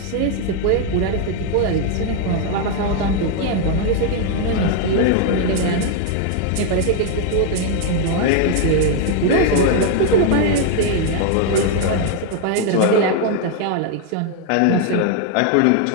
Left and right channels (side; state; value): both; different; correlation 0.00